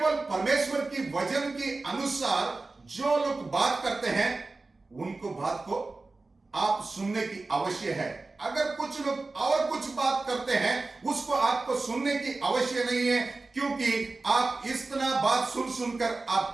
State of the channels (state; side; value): quieter; left; 3.5 dB